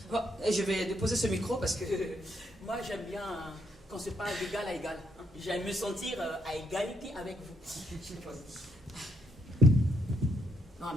Bon, je vais déposer ce micro parce que moi j'aime bien qu'on se parle d'égal à égal. Hein. J'aime me sentir à égalité avec vous. Non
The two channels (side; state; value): both; normal; correlation 0.75